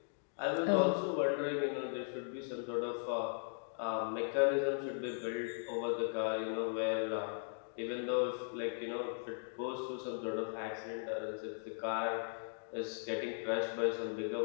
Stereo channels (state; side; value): silent; right; digital silence